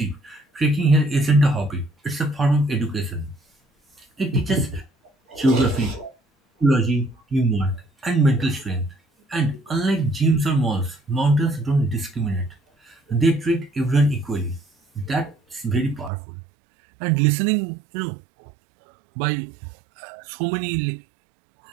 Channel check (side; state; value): left; drops out; at 16.1 s